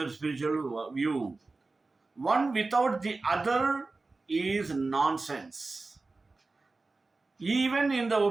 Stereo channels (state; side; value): quieter; left; 3.6 dB